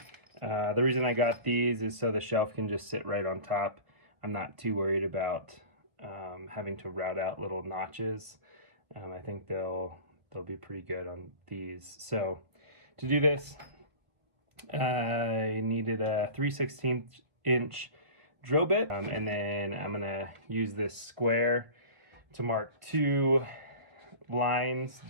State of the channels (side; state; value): left; late; 1.8 ms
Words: The reason I got these is so the shelf can just sit right on top. I'm not too worried about having to route out little notches. I think they'll be pretty good on these. So to do this, I needed a 3/16 inch drill bit, and then I'm gonna use this square to mark 2 lines,